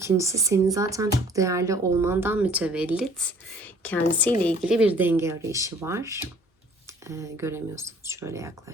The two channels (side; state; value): both; normal; correlation 0.54